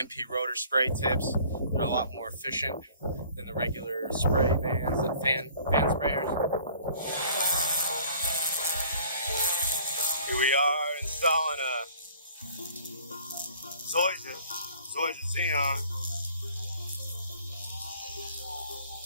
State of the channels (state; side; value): inverted; both; correlation -0.52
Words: rotor spray tips. They're a lot more efficient than the regular spray vans, the fan sprayers. Here we are installing a Zoysia Zeon.